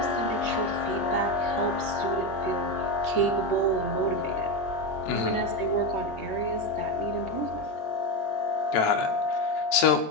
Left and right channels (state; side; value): late; right; 14 ms